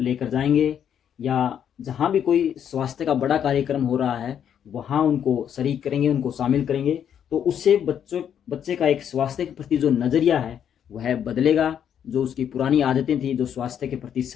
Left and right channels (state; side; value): quieter; right; 9.0 dB